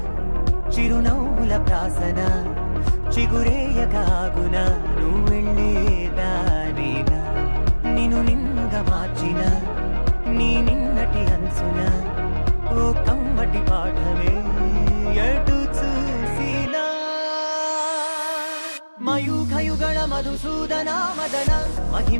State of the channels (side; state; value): both; inverted; correlation -1.00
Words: చిరునవ్వుల ప్రాసన చిగురేయకాగున నువ్వెళ్ళేదానేనా నిన్ను నిన్నుగా మార్చిన నీ నిన్నటి అంచున ఓ కమ్మటి పాఠమే ఎటు చూసినా మయూఖయుగళ మధుసూదన మదన